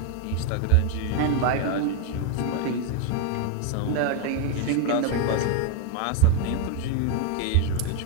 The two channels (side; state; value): both; different; correlation 0.01